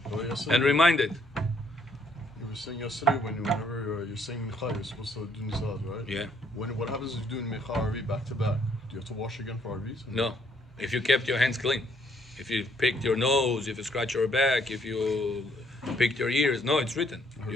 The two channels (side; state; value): both; normal; correlation 0.67